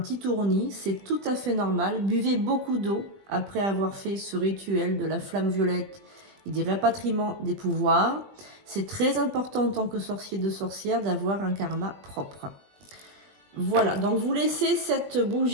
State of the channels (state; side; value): late; left; 20 ms